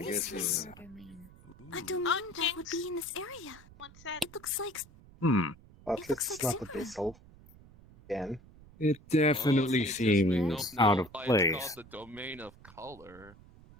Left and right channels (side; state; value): right; noise; rumble, 22 dB below the sound